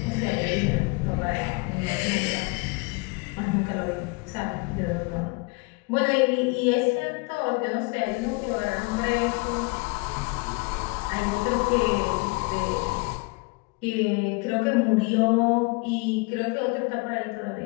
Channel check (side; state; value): right; quieter; 28.8 dB